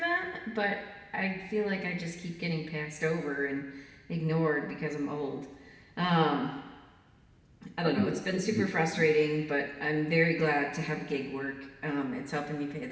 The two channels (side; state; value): both; identical; correlation 1.00